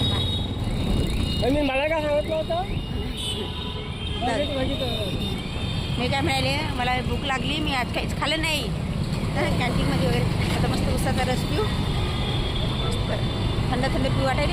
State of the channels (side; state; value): both; identical; correlation 1.00